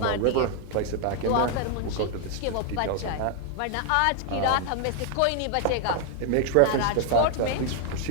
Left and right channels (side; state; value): both; different; correlation 0.00